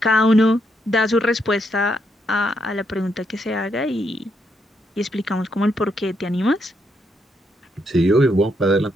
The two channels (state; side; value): normal; both; correlation 0.77